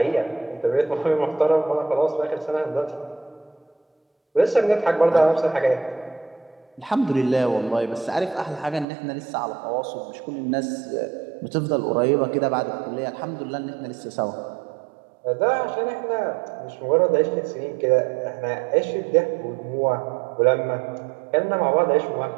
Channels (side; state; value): left; drops out; at 8.8 s